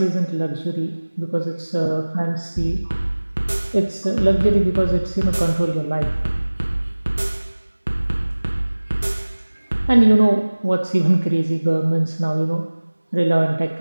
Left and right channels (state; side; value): inverted; both; correlation -1.00